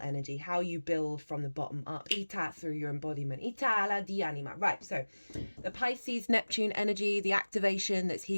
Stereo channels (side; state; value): both; inverted; correlation -1.00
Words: how you build from the bottom up, ita, through your embodiment, ita la di anima. Right, so the Pisces Neptune energy, the activation that's